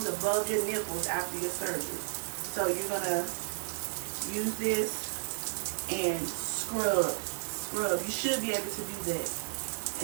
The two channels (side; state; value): left; silent; digital silence